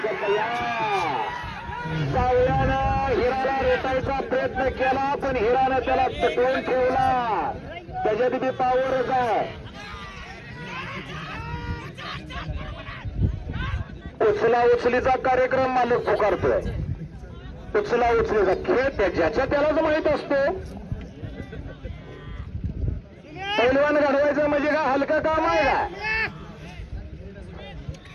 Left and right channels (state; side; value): identical; both; correlation 1.00